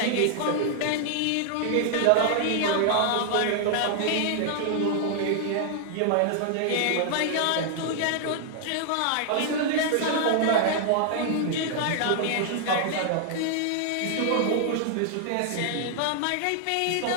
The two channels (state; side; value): different; both; correlation 0.00